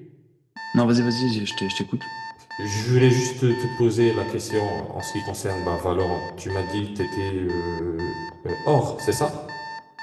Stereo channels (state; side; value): identical; both; correlation 1.00